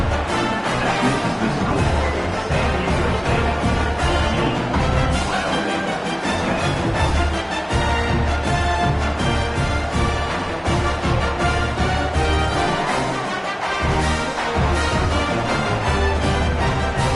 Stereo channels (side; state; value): both; identical; correlation 1.00